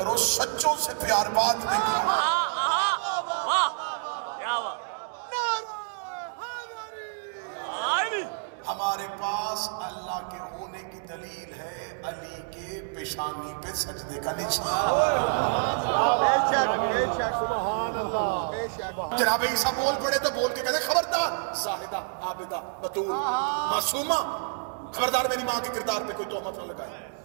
سچوں سے پیار بعد میں کرو۔ واہ کیا بات، علی ہمارے پاس اللہ کے ہونے کی دلیل ہے علی کے پیشانی پہ سجدے کا نشان۔ جناب عیسیٰ بول پڑے تو بول کے کہتے خبردار زاہدہ عابدہ بطول معصومہ، خبردار میری ماں کے کردار پہ کوئی تہمت نہ لگائے۔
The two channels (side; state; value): left; silent; digital silence